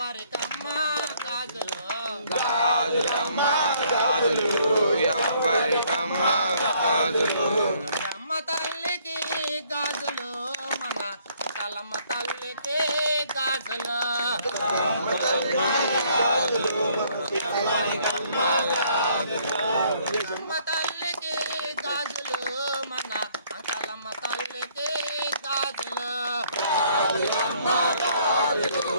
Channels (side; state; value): both; inverted; correlation -0.65